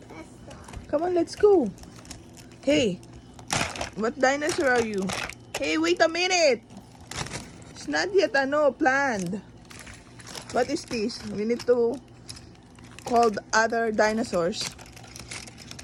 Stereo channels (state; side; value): identical; both; correlation 1.00